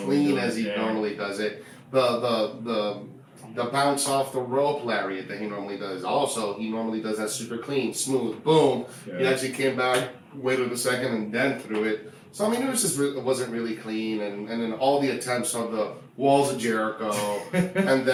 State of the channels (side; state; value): both; identical; correlation 1.00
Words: as he normally does it. The bounce off the rope lariat that he normally does. Also, he normally does that super clean, smooth, boom. Yeah. He actually came back, waited a second, and then threw it. So, I mean, it wasn't really clean. And then all the attempts of the Walls of Jericho, and